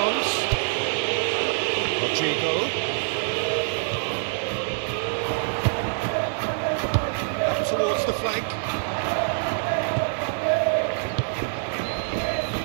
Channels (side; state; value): left; silent; digital silence